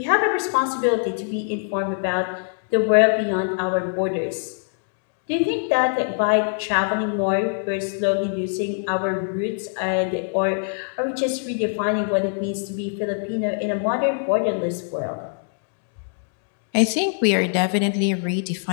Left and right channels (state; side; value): silent; right; digital silence